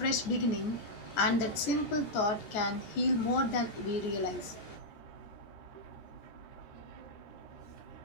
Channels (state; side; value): late; right; 13 ms